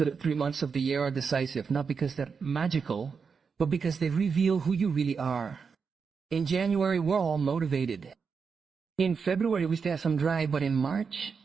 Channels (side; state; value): left; quieter; 5.7 dB